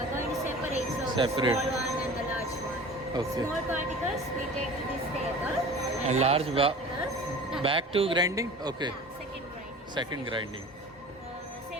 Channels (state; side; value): normal; both; correlation 0.39